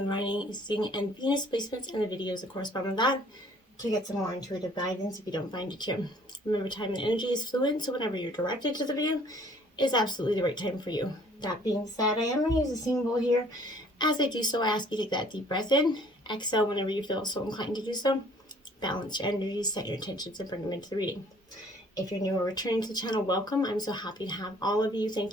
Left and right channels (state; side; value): normal; both; correlation 0.57